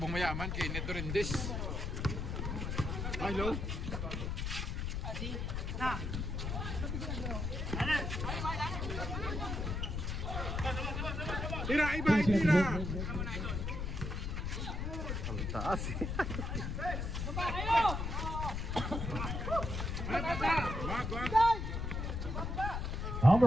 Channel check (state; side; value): noise; left; rumble, 2 dB below the sound